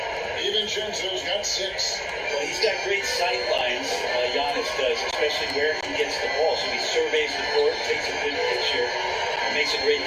DiVincenzo's got 6. Well, he's got great sight lines, Giannis does, especially where he gets the ball. So he surveys the court, takes a good picture, and makes a great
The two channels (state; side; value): identical; both; correlation 1.00